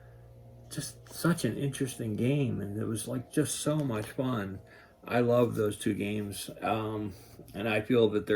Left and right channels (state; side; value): identical; both; correlation 1.00